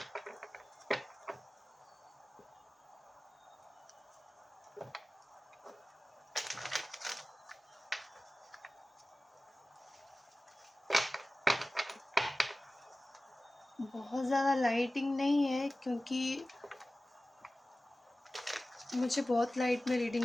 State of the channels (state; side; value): normal; both; correlation 0.96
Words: बहुत ज़्यादा लाइटिंग नहीं है, क्योंकि मुझे बहुत लाइट में